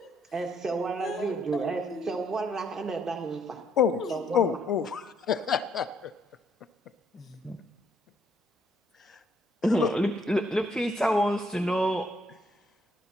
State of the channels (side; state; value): both; normal; correlation 0.69